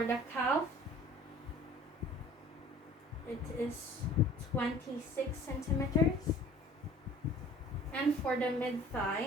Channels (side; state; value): both; normal; correlation 0.48